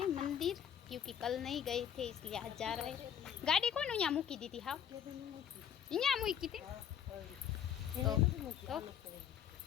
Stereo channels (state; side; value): quieter; right; 9.0 dB